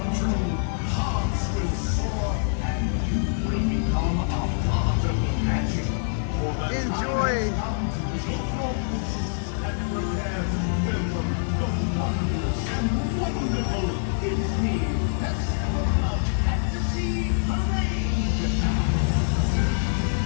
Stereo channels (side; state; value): right; silent; digital silence